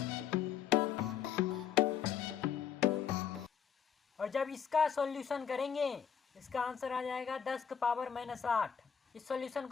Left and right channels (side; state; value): right; quieter; 7.7 dB